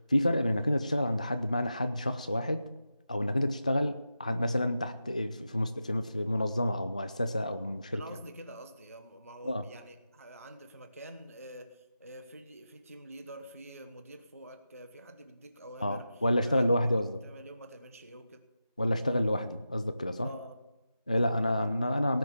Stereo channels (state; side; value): inverted; both; correlation -0.90